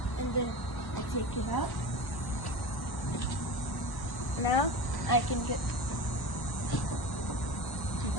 and then I take it out. Now, I can get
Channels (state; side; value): late; right; 1.1 ms